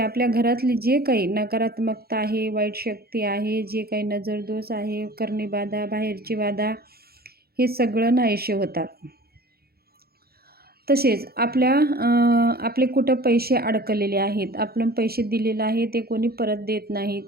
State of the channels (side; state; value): left; late; 0.45 ms